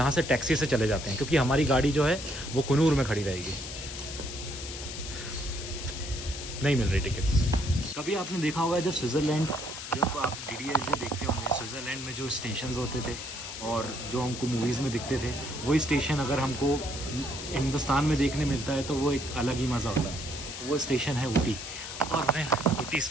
से टैक्सी से चले जाते हैं, क्योंकि हमारी गाड़ी जो है वो कुनूर में खड़ी रहेगी। नहीं मिल रही टिकट। कभी आपने देखा होगा जब स्विट्ज़रलैंड, जब आप DDS देखते होंगे, स्विट्ज़रलैंड में जो स्टेशंस होते थे और जो हमको मूवीज़ में दिखते थे, वही स्टेशन अगर हमको हिंदुस्तान में देखने मिलता है तो वो एक अलग ही मज़ा होता है। वो स्टेशन है ऊटी और मैं ऊटी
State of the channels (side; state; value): left; noise; hiss, 9 dB below the sound